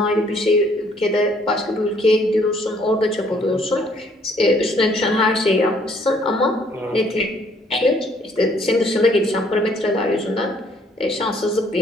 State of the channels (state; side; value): normal; both; correlation 0.64